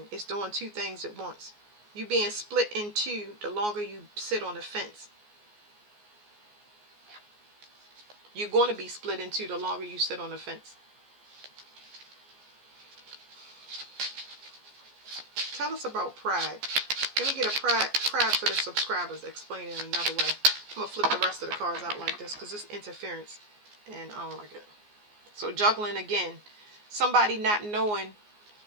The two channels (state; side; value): late; left; 14 ms